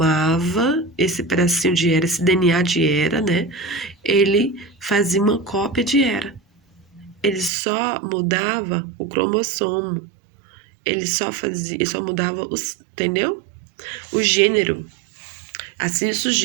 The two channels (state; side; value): drops out; left; at 7.5 s